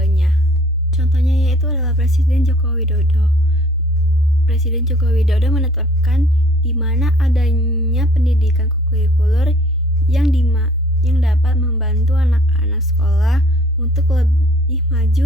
Contohnya yaitu adalah Presiden Joko Widodo. Presiden Joko Widodo menetapkan di mana adanya pendidikan kurikuler yang dapat membantu anak-anak sekolah untuk lebih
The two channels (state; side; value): normal; both; correlation 0.56